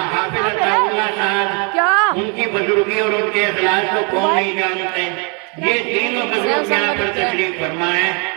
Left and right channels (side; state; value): left; quieter; 35.3 dB